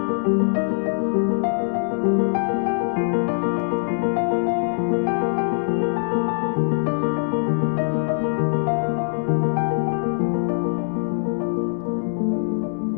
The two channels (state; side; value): silent; right; digital silence